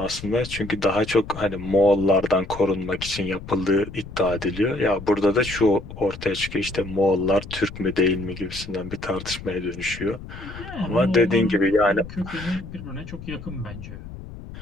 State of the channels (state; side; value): noise; left; rumble, 13 dB below the sound